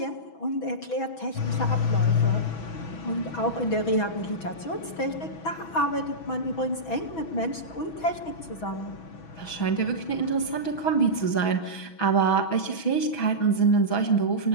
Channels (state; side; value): late; right; 6.1 ms